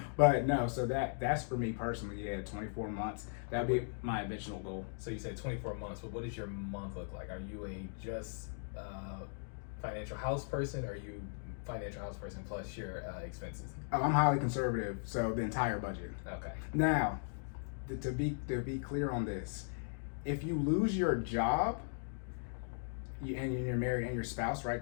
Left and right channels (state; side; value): silent; right; digital silence